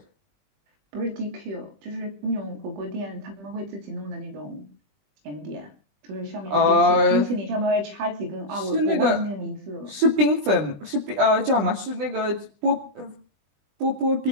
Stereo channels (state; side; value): late; left; 20 ms